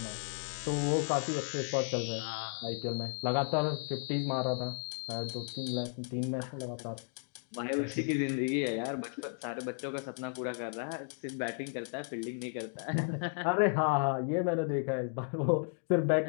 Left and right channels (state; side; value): silent; right; 55 dB below the other